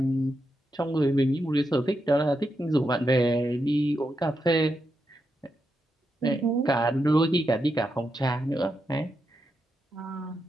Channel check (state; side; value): normal; both; correlation 0.85